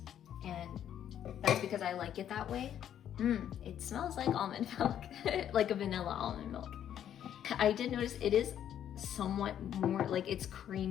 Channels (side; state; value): right; quieter; 10.1 dB